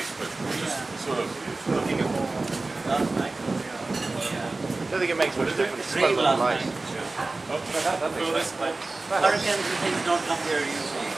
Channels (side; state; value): left; quieter; 3.3 dB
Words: but just sort of looking at all. I don't think it makes much difference. It's quite a lot of light. Oh, that makes sense. Hurricanes and things don't come here usually.